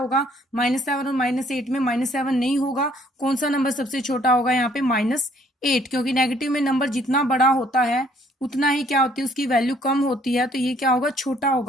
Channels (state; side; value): normal; both; correlation 0.62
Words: -7 और -8 में -7 नहीं होगा। कौन सा नंबर सबसे छोटा होगा? यहाँ पे -8, क्योंकि नेगेटिव में नंबर जितना बड़ा होता है उतना ही क्या होती है? उसकी वैल्यू कम होती है। तो ये क्या होगा? छोटा